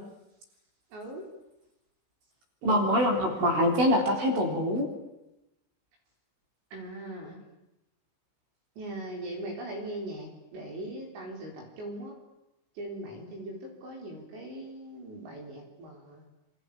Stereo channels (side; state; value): left; late; 16 ms